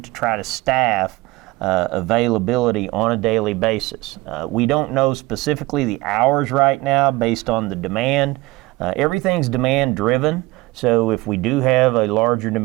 to try to staff availability on a daily basis. We don't know specifically the hours right now based on the demand. Everything's demand driven, so if we do have a larger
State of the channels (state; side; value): quieter; left; 21.0 dB